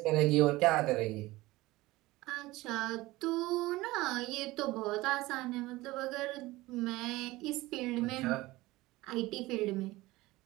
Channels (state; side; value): quieter; left; 19.3 dB